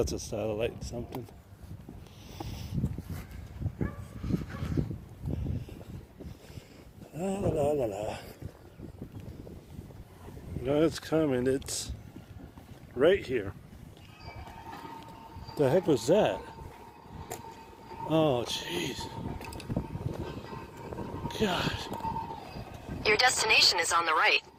a satellite something. La la la la la. No, it's coming. It's right here. The heck was that? Oh, jeez. God. Your destination is on the right.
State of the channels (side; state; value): both; identical; correlation 1.00